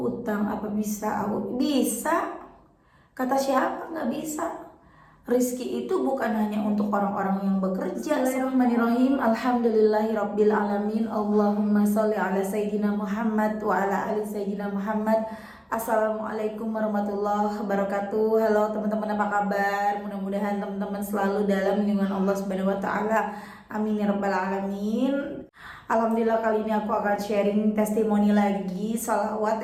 apa bisa aku bisa. Kata siapa nggak bisa? Rizki itu bukan hanya untuk orang-orang yang bekerja. Bismillahirrahmanirrahim. Alhamdulillahirabbil alamin. Allahumma sholli ala sayyidina Muhammad wa ala ali sayyidina Muhammad. Assalamualaikum warahmatullahi wabarakatuh. Halo teman-teman, apa kabar? Mudah-mudahan teman-teman selalu dalam lindungan Allah Subhanahu wa taala. Amin ya rabbal alamin. Alhamdulillah, kali ini aku akan sharing testimoni lagi,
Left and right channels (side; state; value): both; identical; correlation 1.00